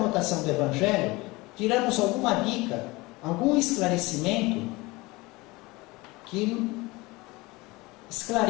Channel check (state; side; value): quieter; right; 22.5 dB